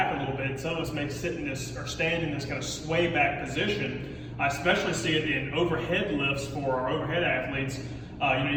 a little bit. Some of us may sit in this or stand in this kind of sway back position. I especially see it in overhead lifts for our overhead athletes.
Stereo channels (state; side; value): identical; both; correlation 1.00